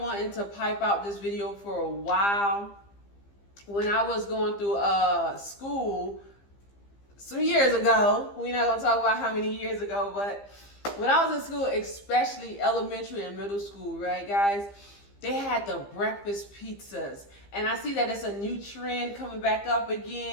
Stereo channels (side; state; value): right; late; 15 ms